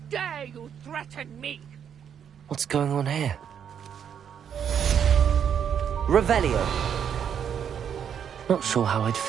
dare you threaten me? What's going on here? Revelio. Not sure how I'd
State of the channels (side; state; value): left; quieter; 8.3 dB